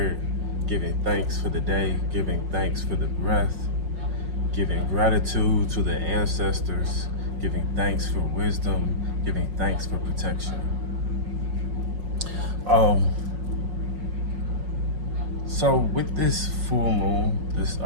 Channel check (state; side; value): late; left; 5.4 ms